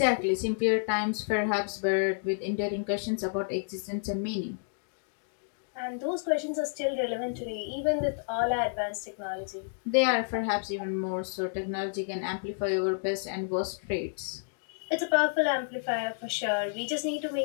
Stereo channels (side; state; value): right; silent; digital silence